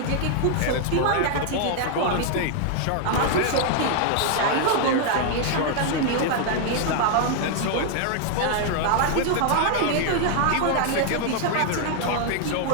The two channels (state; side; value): different; both; correlation 0.00